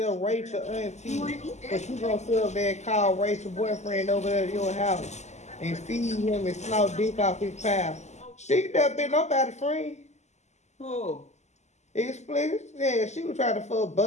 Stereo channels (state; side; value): late; right; 0.33 ms